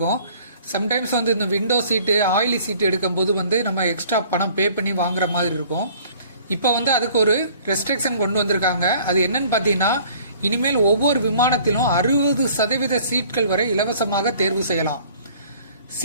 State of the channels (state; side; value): inverted; both; correlation -0.53